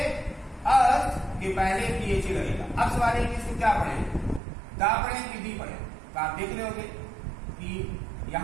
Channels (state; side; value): drops out; left; at 4.4 s